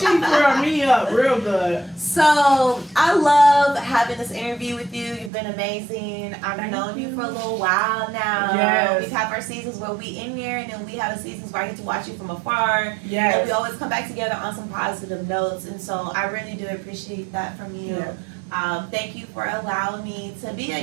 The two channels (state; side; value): drops out; left; at 5.3 s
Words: curled me up real good. So I love having this interview with you. You've been amazing. I've known you for a little while now. Yes. We have our seasons where we in here, and then we have the seasons where I get to watch you from afar. Yes. And we always come back together on some positive notes. And so I really do appreciate that from you. Yeah. Thank you for allowing me to be